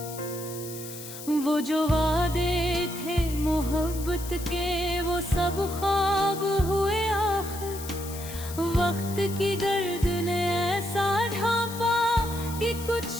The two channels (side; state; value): left; noise; hiss, 12 dB below the sound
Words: वो जो वादे थे मोहब्बत के वो सब ख्वाब हुए आखिर, वक्त की गर्द ने ऐसा ढांपा कि कुछ